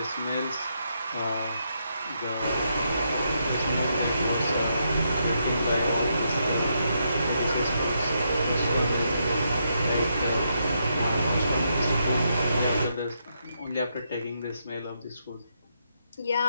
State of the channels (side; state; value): both; inverted; correlation -0.79